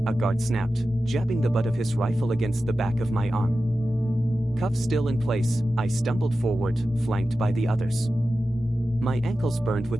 guard snapped, jabbing the butt of his rifle against the back of my arm. Cuffs still in place, I stumbled forward, flanked by the others. My ankles burned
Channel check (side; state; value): both; normal; correlation 0.93